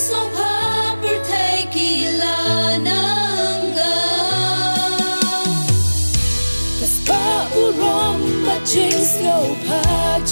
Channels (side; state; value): both; inverted; correlation -1.00